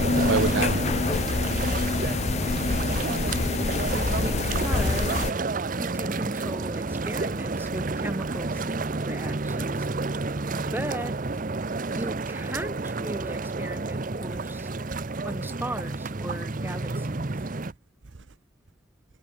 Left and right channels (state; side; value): normal; both; correlation 0.47